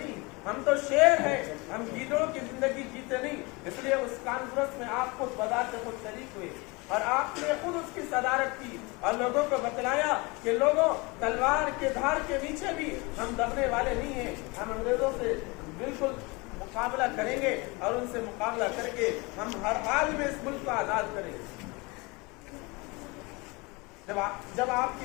ہم تو شیر ہیں، ہم گیدڑوں کی زندگی جیتے نہیں۔ اس لیے اس کانفرنس میں آپ خود بذات خود شریک ہوئے اور آپ نے خود اس کی صدارت کی اور لوگوں کو بتلایا کہ لوگوں تلوار کے دھار کے نیچے بھی ہم ڈرنے والے نہیں ہیں، ہم انگریزوں سے بالکل مقابلہ کریں گے اور ان سے مقابلہ کر کے ہم ہر حال میں اس ملک کو آزاد کریں گے۔ جب آپ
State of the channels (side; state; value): right; quieter; 26.4 dB